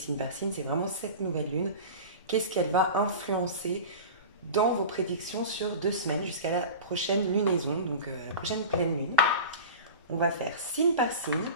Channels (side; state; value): both; inverted; correlation -0.31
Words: par signe, c'est vraiment cette nouvelle lune. Qu'est-ce qu'elle va influencer dans vos prédictions sur 2 semaines jusqu'à la prochaine lunaison, donc la prochaine pleine lune. On va faire signe par signe.